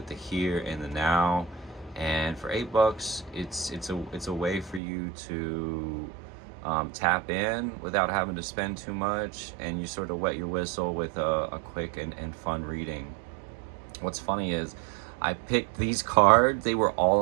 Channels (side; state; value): left; drops out; at 4.8 s